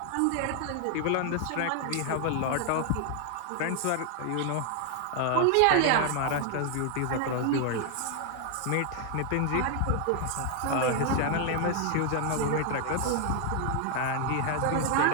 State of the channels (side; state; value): both; different; correlation 0.00